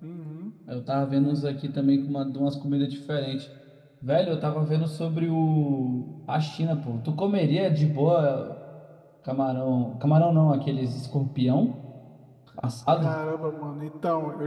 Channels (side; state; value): both; identical; correlation 1.00